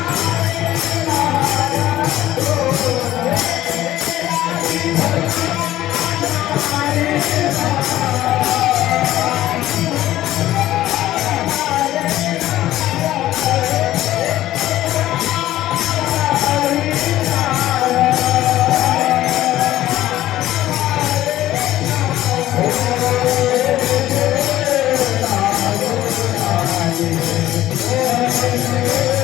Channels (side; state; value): right; quieter; 14.2 dB